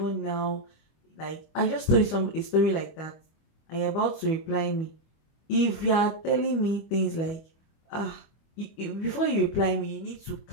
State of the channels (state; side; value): late; right; 25 ms